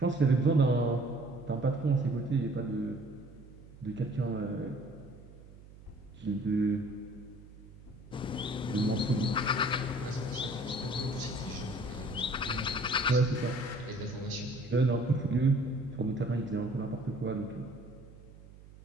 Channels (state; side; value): noise; right; hum, 20 dB below the sound